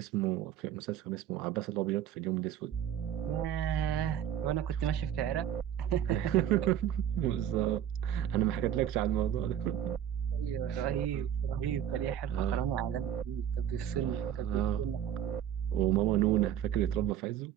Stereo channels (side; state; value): left; quieter; 10.2 dB